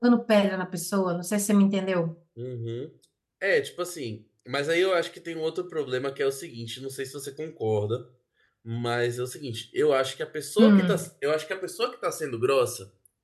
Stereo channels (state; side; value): identical; both; correlation 1.00